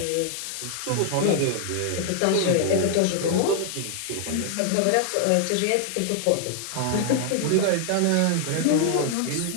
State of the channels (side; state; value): both; different; correlation 0.00